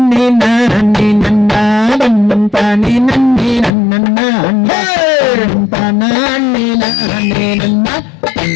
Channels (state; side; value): drops out; right; at 3.7 s